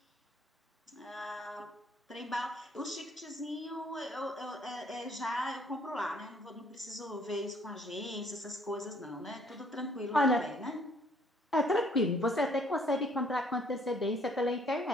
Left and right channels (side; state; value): both; normal; correlation 0.62